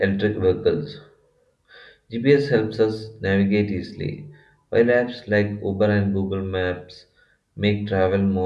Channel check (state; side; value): identical; both; correlation 1.00